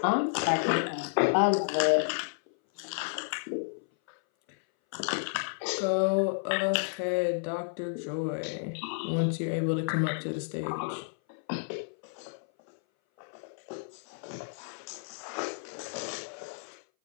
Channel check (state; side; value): silent; right; 57 dB below the other